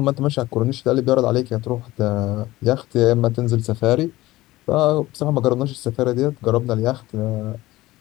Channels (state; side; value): quieter; right; 17.8 dB